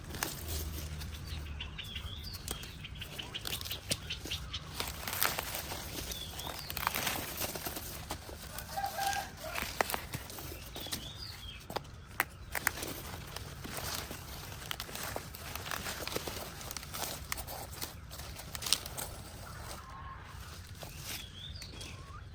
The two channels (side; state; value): both; identical; correlation 1.00